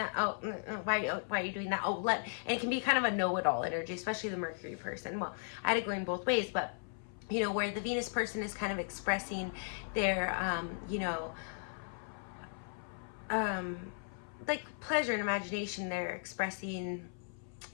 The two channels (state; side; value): silent; right; 53 dB below the other